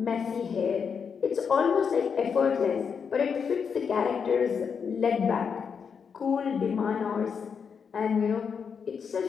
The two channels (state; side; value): quieter; right; 6.4 dB